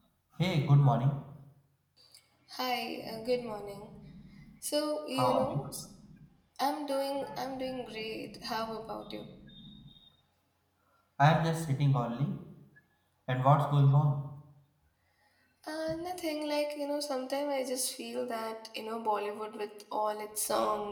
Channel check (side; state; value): both; identical; correlation 1.00